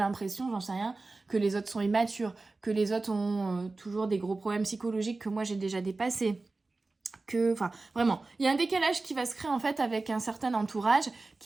j'en sais rien, que les autres sont immatures, que les autres ont toujours des gros problèmes psychologiques que moi j'ai déjà dépassés. Enfin, vraiment, il y a un décalage qui va se créer en fait avec un certain entourage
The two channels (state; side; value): quieter; left; 3.5 dB